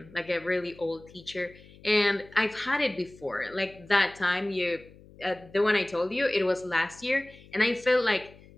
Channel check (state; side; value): noise; left; hum, 23 dB below the sound